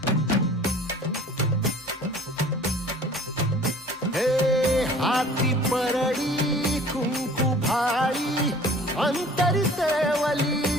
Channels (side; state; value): both; normal; correlation 0.48